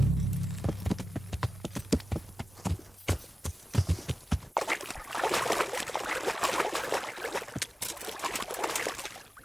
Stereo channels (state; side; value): normal; both; correlation 0.94